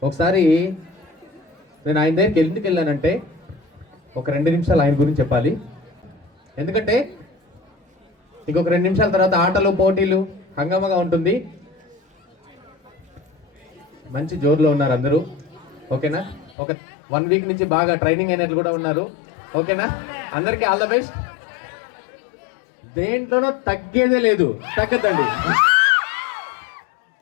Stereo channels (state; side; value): drops out; right; at 16.6 s